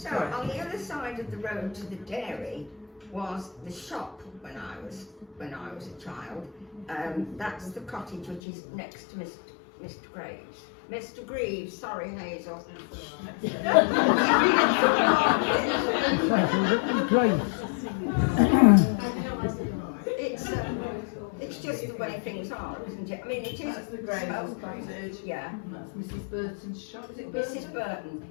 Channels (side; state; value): right; drops out; at 8.4 s